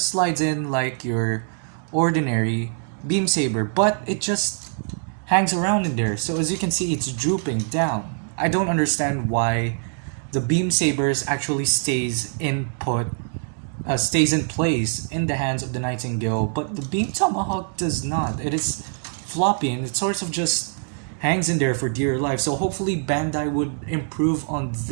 slides in like your ordinary Beam Saber, but it just hangs around in there. So as you can see, it's drooping down. I don't understand why the Beam Sabers actually stays in place in the hands of the Nightingale, but the Beam Tomahawk does not. It is floppy and it sort of just hangs in there for dear life. So hopefully Bandai would improve on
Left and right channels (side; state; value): left; silent; digital silence